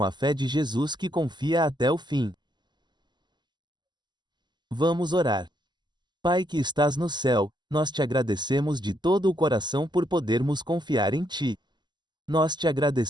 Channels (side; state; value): left; late; 0.21 ms